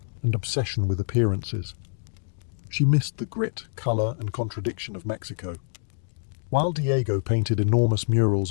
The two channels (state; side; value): silent; right; digital silence